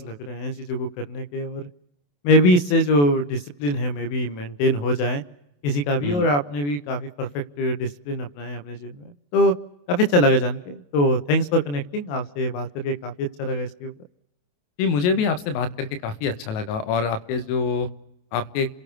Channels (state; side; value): late; right; 28 ms